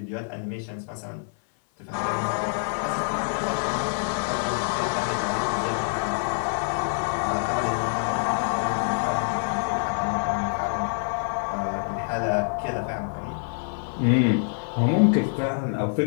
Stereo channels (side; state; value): right; silent; 56 dB below the other